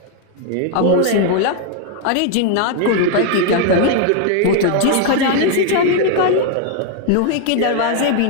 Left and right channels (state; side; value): different; both; correlation 0.00